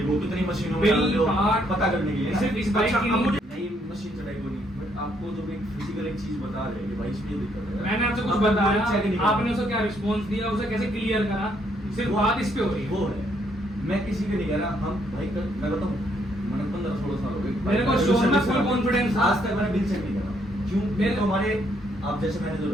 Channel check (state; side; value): normal; both; correlation 0.71